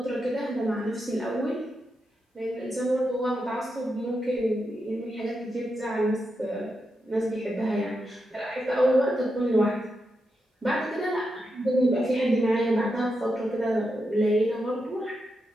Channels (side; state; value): both; normal; correlation 0.86